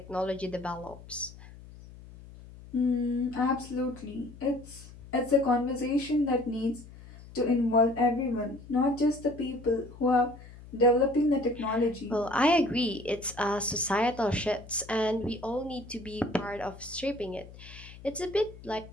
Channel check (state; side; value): noise; left; hum, 18 dB below the sound